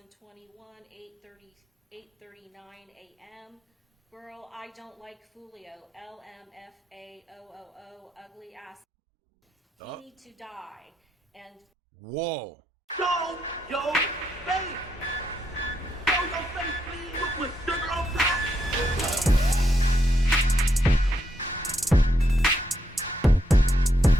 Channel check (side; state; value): both; normal; correlation 0.79